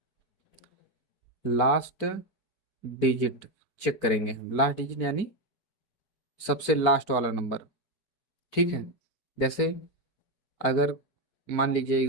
लास्ट डिजिट चेक करेंगे हम। लास्ट डिजिट यानी सबसे लास्ट वाला नंबर, ठीक है। जैसे अगर मान लीजिए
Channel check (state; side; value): late; right; 4.5 ms